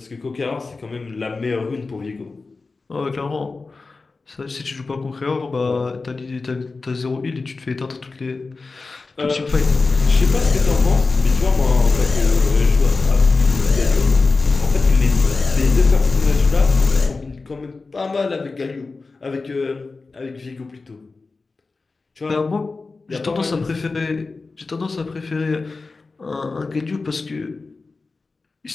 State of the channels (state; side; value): quieter; right; 3.9 dB